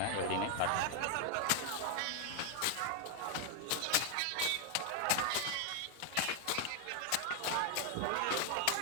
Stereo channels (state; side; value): different; both; correlation 0.00